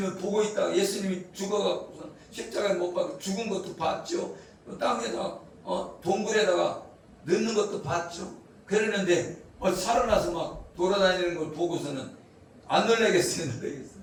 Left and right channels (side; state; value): both; identical; correlation 1.00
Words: 보고 있다가 예수님이 죽어갖고 십자가에 못 박혀 죽은 것도 봤죠. 땅에다가 동굴에다가 넣는 것도 봤죠. 그랬는데 살아나서 막 돌아다니는 걸 보고서는 안 놀라겠어요?